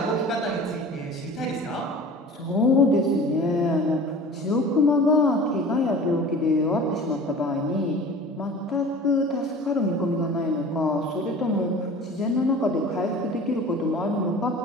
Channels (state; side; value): normal; both; correlation 0.41